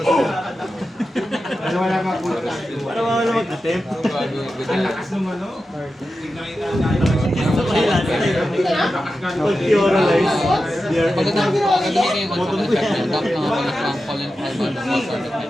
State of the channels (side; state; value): both; normal; correlation 0.91